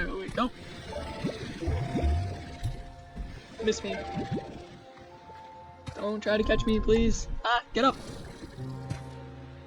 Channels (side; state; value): both; identical; correlation 1.00